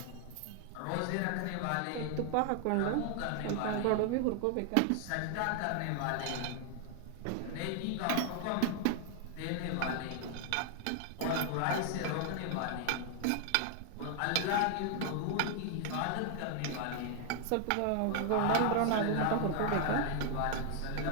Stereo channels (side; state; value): both; different; correlation 0.00